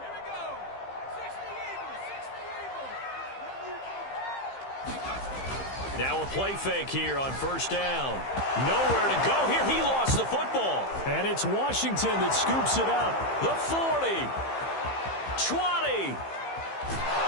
Now a play fake here on first down. Nowhere to go here. He lost the football. And it's Washington that scoops it up. The 40. 20.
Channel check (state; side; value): late; right; 15 ms